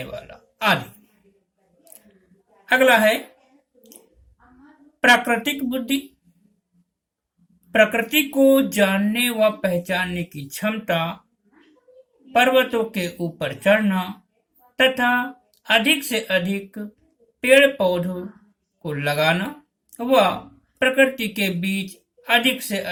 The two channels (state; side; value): identical; both; correlation 1.00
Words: वाला आदि। अगला है प्राकृतिक बुद्धि। प्रकृति को जानने व पहचानने की क्षमता, पर्वतों के ऊपर चढ़ना तथा अधिक से अधिक पेड़ पौधों को लगाना व प्रकृति के बीच अधिक से